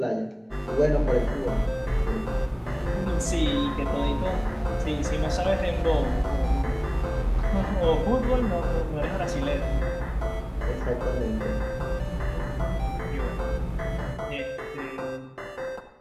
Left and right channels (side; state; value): both; identical; correlation 1.00